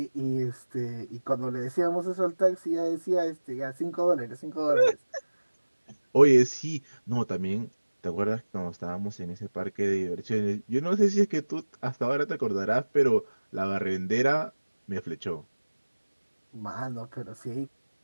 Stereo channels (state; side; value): inverted; both; correlation -1.00